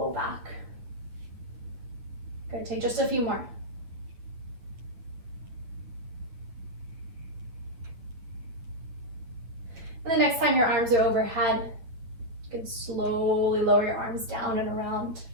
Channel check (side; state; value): left; late; 9.3 ms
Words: back. Good, take just a few more. And the next time your arms are overhead, you can slowly lower your arms down and around.